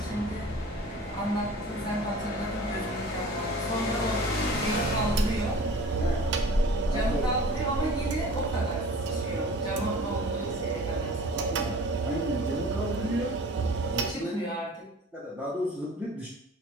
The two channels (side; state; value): both; normal; correlation 0.43